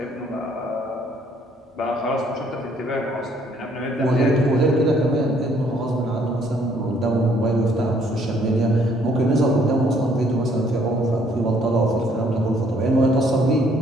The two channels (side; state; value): both; normal; correlation 0.64